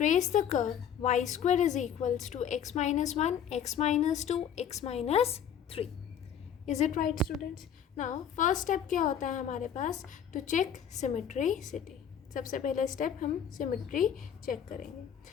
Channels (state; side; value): quieter; right; 8.5 dB